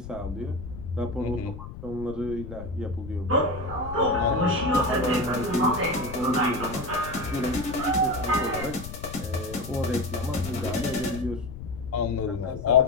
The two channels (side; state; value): left; noise; rumble, 11 dB below the sound